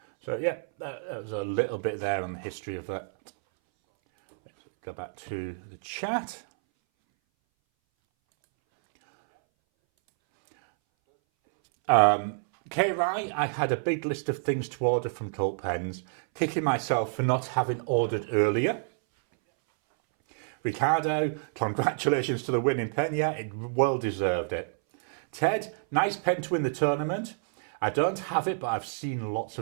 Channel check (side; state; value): left; silent; 59 dB below the other